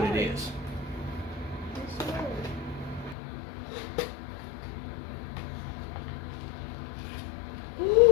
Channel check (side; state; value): right; drops out; at 3.2 s